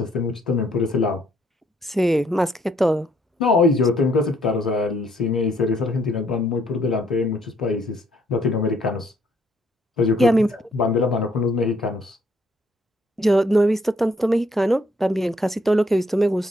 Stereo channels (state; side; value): normal; both; correlation 0.68